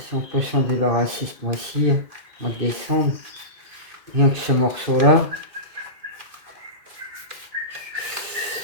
on peut s'en débarrasser ce mois-ci, mois de décembre, rien que ce morceau-là.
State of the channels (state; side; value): late; left; 2.1 ms